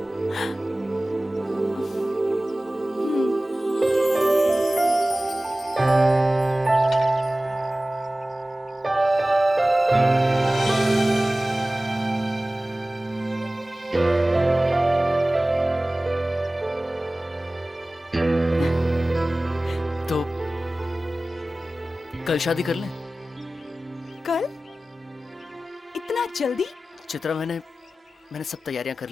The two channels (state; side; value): normal; both; correlation 0.97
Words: तो कल शादी कर लें? कल? इतना जल्दी? चित्रा, मैंने सब तैयारियां कर